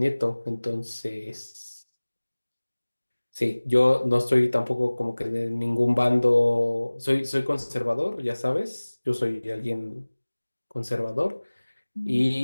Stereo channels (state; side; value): inverted; both; correlation -1.00